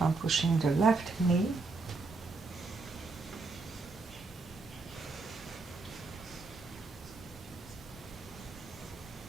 pushing the left knee.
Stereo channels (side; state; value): left; quieter; 3.8 dB